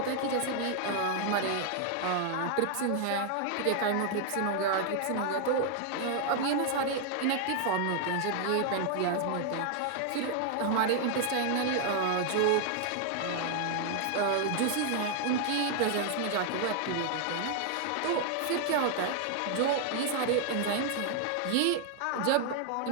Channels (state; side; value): different; both; correlation 0.00